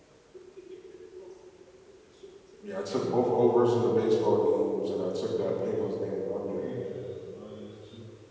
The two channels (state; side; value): identical; both; correlation 1.00